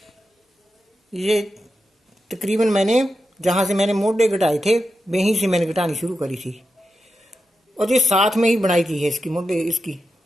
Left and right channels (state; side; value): normal; both; correlation 0.89